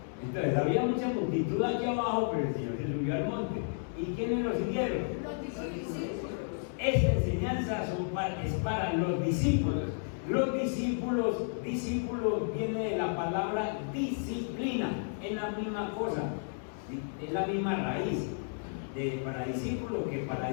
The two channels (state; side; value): silent; right; digital silence